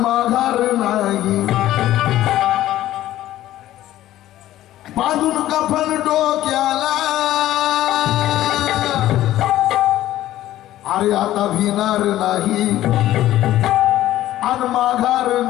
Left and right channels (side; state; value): right; quieter; 14.1 dB